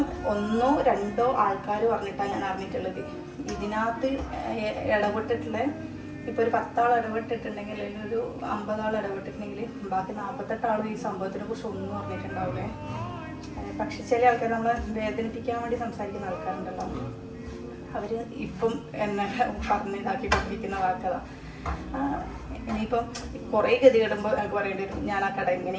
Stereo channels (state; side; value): identical; both; correlation 1.00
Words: 1 2 ആൾക്കാർ പറഞ്ഞിട്ടാണ് ഞാൻ അറിഞ്ഞിട്ടുള്ളത്. ഇതിനകത്ത് ഇടപെട്ടിട്ടുള്ള ഇപ്പൊ ഒരു 10 ആൾ ഇടപെട്ടിട്ടുണ്ടെങ്കിൽ, അല്ലെങ്കിൽ ഒരു 50 ആൾ ഇടപെട്ടിട്ടുണ്ടെങ്കിൽ ബാക്കി 48 ആളും ഈ സംഭവത്തിനെ കുറിച്ച് ഒന്നും പറഞ്ഞിട്ടുണ്ടാവില്ലേ. പക്ഷെ ചില ആൾക്കാർ നമ്മളെ വേദനിപ്പിക്കാൻ വേണ്ടി സംസാരിക്കുന്ന ആൾക്കാരുണ്ടല്ലോ, അവര് ഇപ്പം എന്നെ പറഞ്ഞിതാക്കി കൊണ്ടിരിക്കുന്ന വാക്കതാ. ഇനിയിപ്പം കുറേ ഗതി കിടുമ്പോൾ എനിക്ക് പറയേണ്ടി വരും, ഞാൻ ആ കട